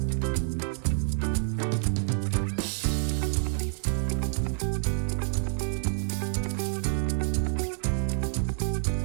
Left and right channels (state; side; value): silent; left; digital silence